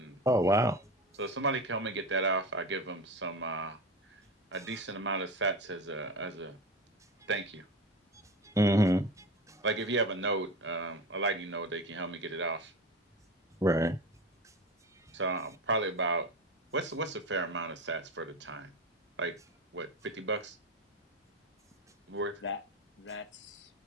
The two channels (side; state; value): both; normal; correlation 0.26